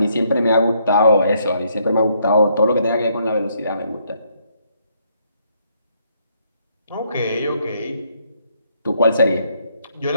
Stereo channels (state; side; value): inverted; both; correlation -0.71